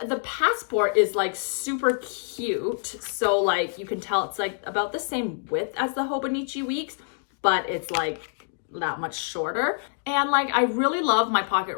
the passport is like super cute. So like you can tell it's like about the same width as the Hobonichi weeks, but it's like that much shorter. And like I really love my pocket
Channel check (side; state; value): right; silent; digital silence